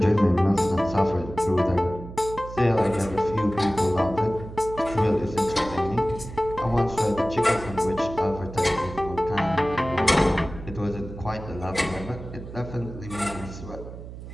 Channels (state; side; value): noise; right; hum, 12 dB below the sound